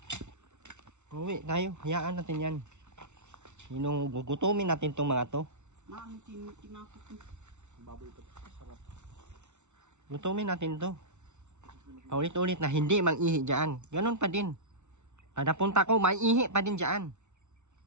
Uwi tayo. Hayaan natin yan. Gugutumin natin tong mga to. Baboy ito. Sarap. Gutumin natin to. Paulit-ulit na hindi mag-ihi dyan. Ganun pa din. Kada punta ko, may ihi pa din dyan.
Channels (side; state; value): left; late; 0.83 ms